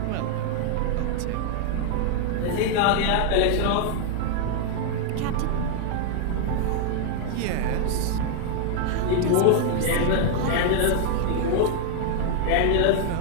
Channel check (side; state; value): both; different; correlation 0.00